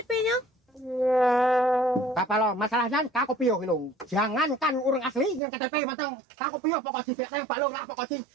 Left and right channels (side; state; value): left; drops out; at 5.4 s